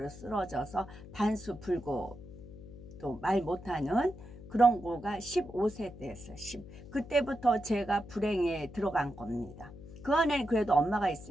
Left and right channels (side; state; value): left; noise; hum, 16 dB below the sound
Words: 쓰러져서 반수 불고 또 말 못하는 그런 거가 15세 때였어요. 그때부터 제가 불행에 들어간 겁니다. 그 안에 그래도 엄마가